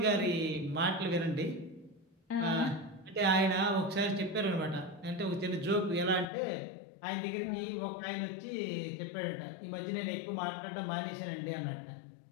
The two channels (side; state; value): right; drops out; at 6.2 s